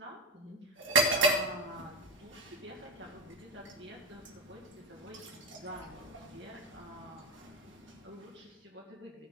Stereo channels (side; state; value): both; normal; correlation 0.15